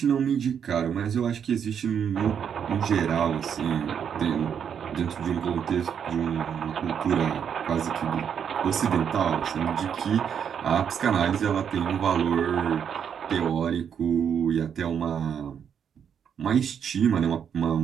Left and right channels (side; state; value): left; quieter; 7.9 dB